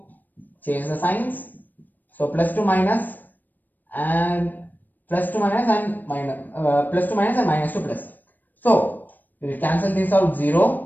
change the signs. So plus 2 minus and plus 2 minus and minus, plus 2 minus and minus 2 plus. So we will cancel this out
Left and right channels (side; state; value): right; late; 0.089 ms